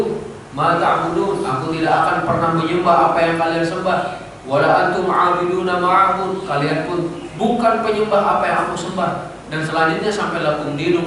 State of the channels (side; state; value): both; identical; correlation 1.00